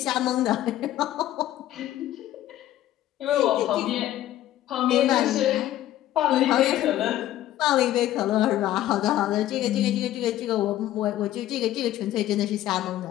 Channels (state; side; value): quieter; right; 13.5 dB